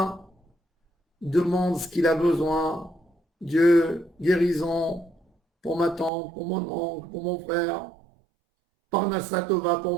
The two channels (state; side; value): drops out; left; at 6.1 s